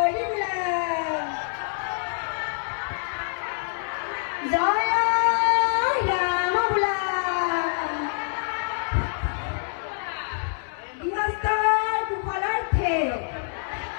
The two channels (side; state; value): right; silent; digital silence